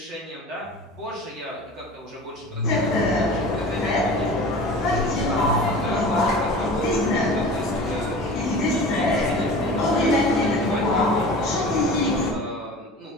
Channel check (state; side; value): normal; both; correlation 0.38